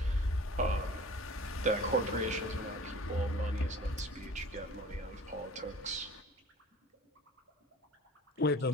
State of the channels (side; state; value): both; normal; correlation 0.44